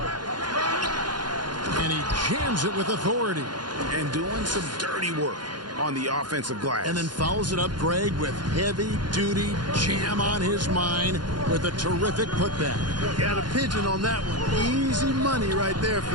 And he jams it with authority. And doing some dirty work on the offensive glass. And then fouls it up, Greg, with heavy-duty jam on his mind with a terrific putback. Got a pigeon on that one. Easy money right there,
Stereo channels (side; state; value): left; late; 0.71 ms